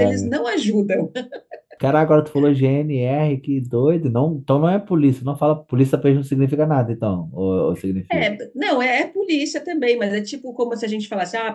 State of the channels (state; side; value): identical; both; correlation 1.00